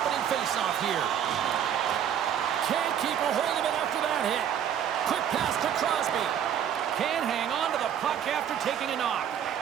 faceoff here. Can't keep a hold of it after that hit. Quick pass to Crosby. Can't hang on to the puck after taking a knock.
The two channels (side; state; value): left; quieter; 9.3 dB